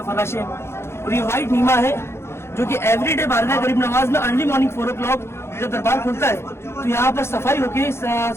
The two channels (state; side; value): late; right; 0.12 ms